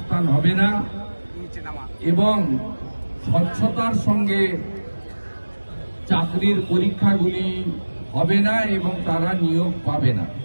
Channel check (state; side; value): inverted; both; correlation -1.00